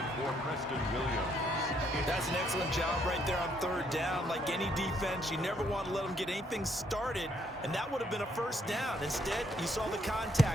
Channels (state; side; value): normal; both; correlation 0.70